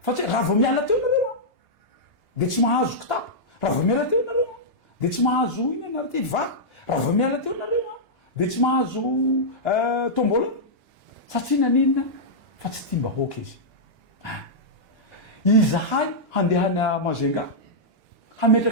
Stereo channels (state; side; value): late; left; 2.9 ms